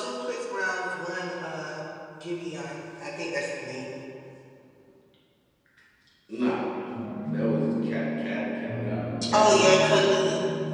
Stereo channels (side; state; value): both; identical; correlation 1.00